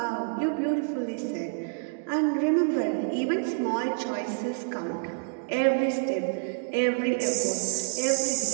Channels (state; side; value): silent; left; digital silence